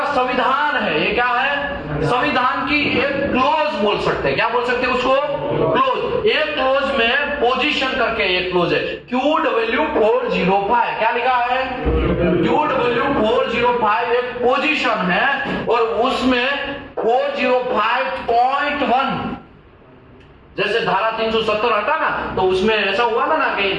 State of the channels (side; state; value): both; identical; correlation 1.00